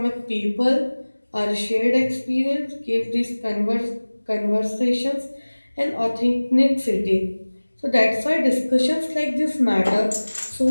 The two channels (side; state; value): both; inverted; correlation -1.00